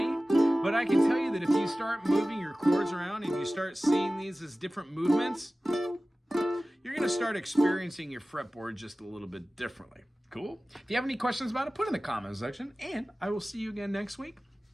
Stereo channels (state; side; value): normal; both; correlation 0.97